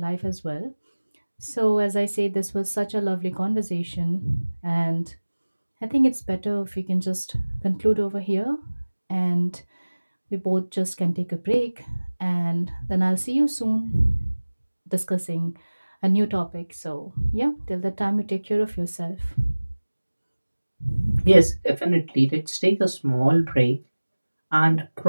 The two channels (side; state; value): both; inverted; correlation -1.00